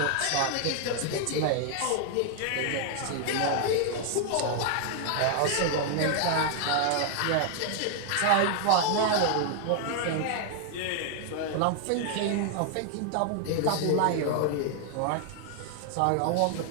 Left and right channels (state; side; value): different; both; correlation 0.00